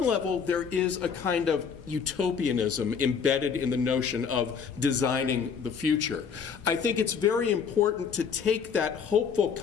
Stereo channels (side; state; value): right; quieter; 6.5 dB